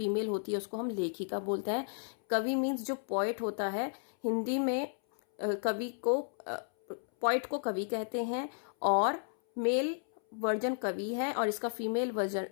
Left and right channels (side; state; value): right; silent; 56 dB below the other